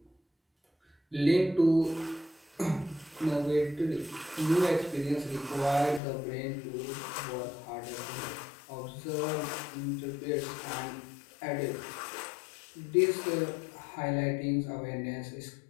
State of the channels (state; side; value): drops out; right; at 6.0 s